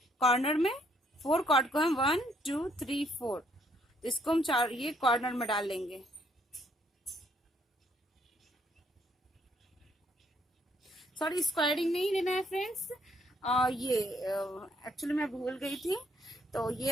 कॉर्नर में 4 कॉर्ड को हम 1 2 3 4 तो इसको हम ये कॉर्नर में डाल लेंगे। सॉरी स्क्वायरिंग नहीं लेना है फ्रेंड्स, ये एक्चुअली मैं भूल गई थी। तो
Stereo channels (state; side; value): normal; both; correlation 0.69